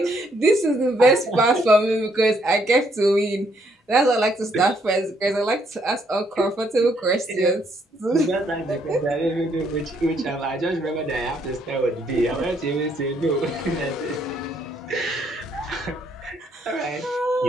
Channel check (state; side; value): normal; both; correlation 0.70